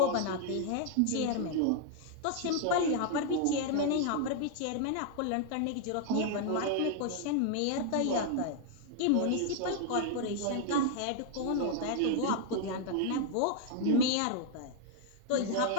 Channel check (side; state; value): both; different; correlation 0.00